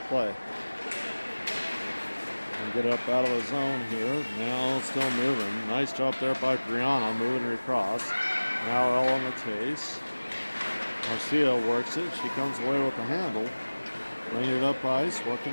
the play. And get it up out of the zone here. Now still moving. Nice job there by Brianna, moving her across. Now Ella on the chase. Marcia works it. She comes away with the handle. Bringing it up ice,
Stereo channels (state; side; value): inverted; both; correlation -1.00